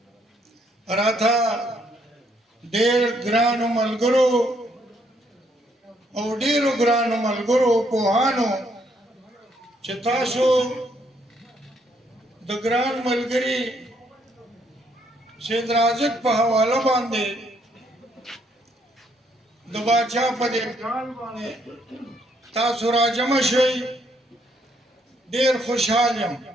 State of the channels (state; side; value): normal; both; correlation 0.71